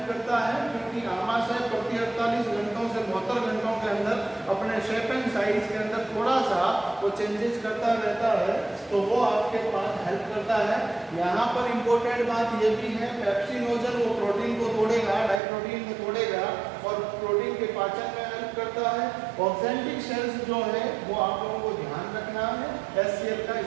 करता है, क्योंकि आमाशय प्रति 48 घंटों से 72 घंटों के अंदर अपने शेप एंड साइज के अंदर थोड़ा सा वो चेंजेस करता रहता है, तो वो आपके पास हेल्प करता है। यहाँ पर इम्पोर्टेंट बात ये भी है, पेप्सिनोजन वो प्रोटीन को तोड़ेगा, डाइप्रोटीन को तोड़ेगा और प्रोटीन के पाचन में हेल्प करता है। ऑक्जेंटिक सेल्स जो है वो आप लोगों को ध्यान रखना है, HCl का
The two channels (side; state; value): left; drops out; at 15.4 s